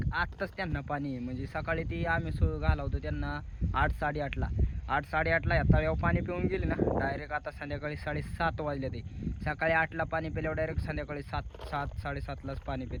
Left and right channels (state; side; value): identical; both; correlation 1.00